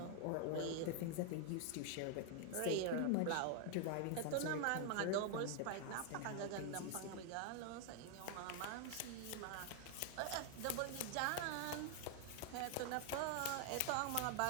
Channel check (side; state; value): both; different; correlation 0.00